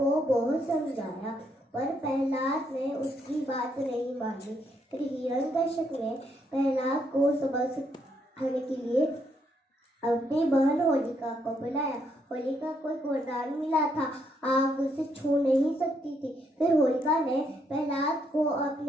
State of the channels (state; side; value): normal; both; correlation 0.74